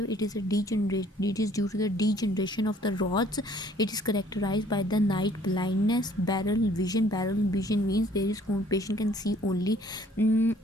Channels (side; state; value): both; normal; correlation 0.59